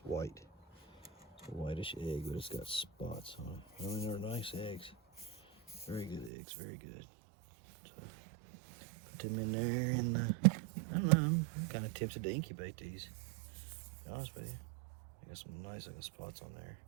white. It's a whitish egg, but it's got spots on it. I mean, they're nice eggs. Very good eggs, very good. So put them in there, and I don't know, I'm kind of tempted to incubate these, to be honest with you. I got some nice little spots on there.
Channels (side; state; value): left; drops out; at 6.3 s